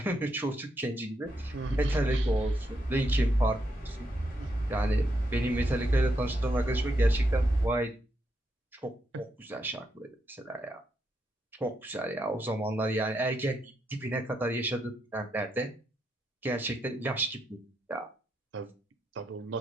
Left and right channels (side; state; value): both; normal; correlation 0.80